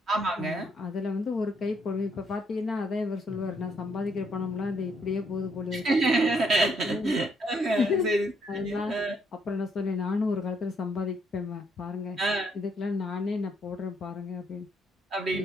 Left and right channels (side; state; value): both; normal; correlation 0.71